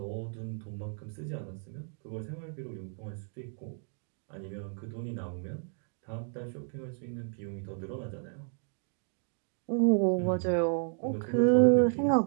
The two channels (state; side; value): silent; left; 56 dB below the other